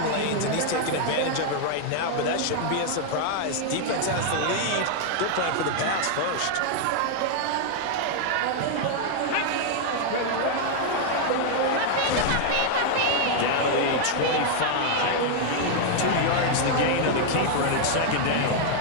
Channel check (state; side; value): different; both; correlation 0.00